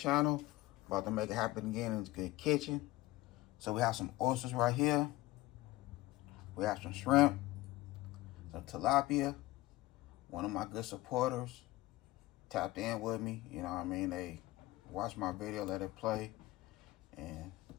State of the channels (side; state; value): right; quieter; 18.6 dB